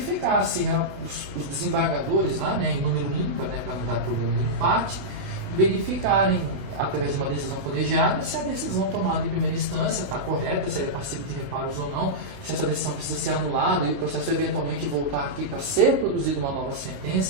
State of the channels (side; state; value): left; late; 29 ms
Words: se os desembargadores lá, né, em número ímpar, né, para não dar problema de empate, verificarem, através de uma decisão colegiada, se a decisão tomada em primeira instância está correta, se ela é passível de reparos ou não, se essa decisão precisa ser anulada e o processo eventualmente voltar aqui para ser produzida uma nova